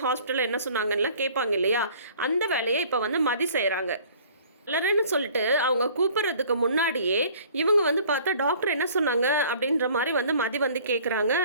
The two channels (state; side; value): inverted; both; correlation -0.51